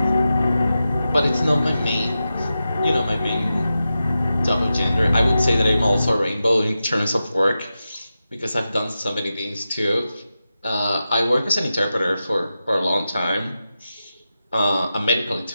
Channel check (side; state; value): both; inverted; correlation -0.91